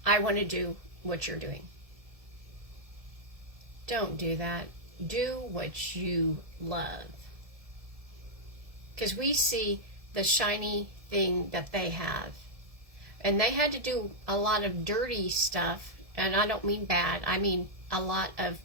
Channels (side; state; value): left; late; 1.7 ms